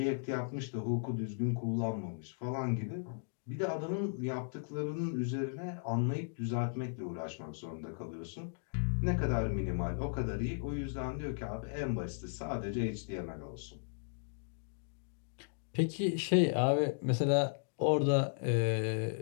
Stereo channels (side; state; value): right; silent; digital silence